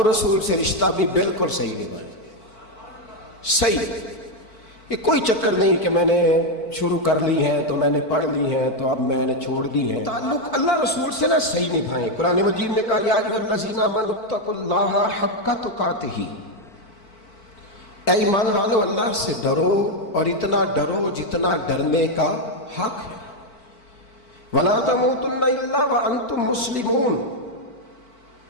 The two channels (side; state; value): right; late; 4.5 ms